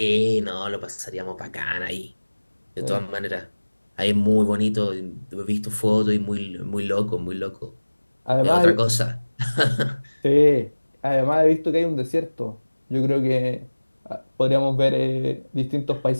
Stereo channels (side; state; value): both; inverted; correlation -1.00